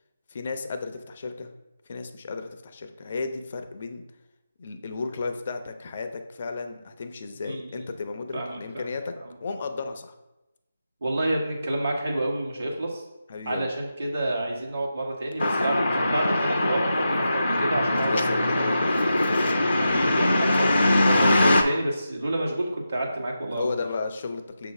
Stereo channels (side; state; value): both; inverted; correlation -0.88